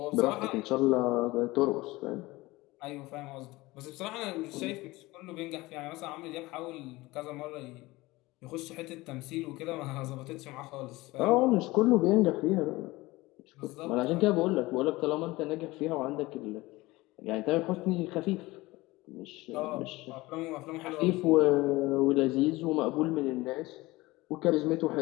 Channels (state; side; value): quieter; right; 20.4 dB